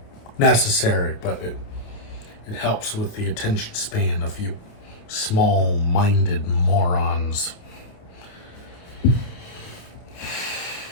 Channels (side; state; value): right; late; 28 ms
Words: necessary, but it helps with the attention span of you small-minded morons.